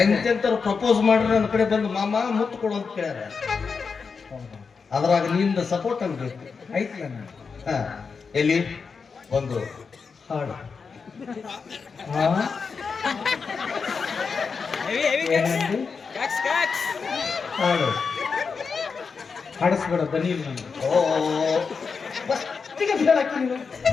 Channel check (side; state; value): right; quieter; 5.3 dB